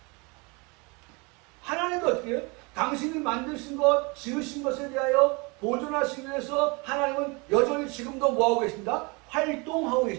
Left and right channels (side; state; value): left; quieter; 28.7 dB